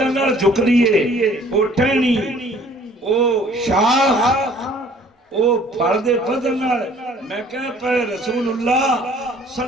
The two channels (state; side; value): normal; both; correlation 0.55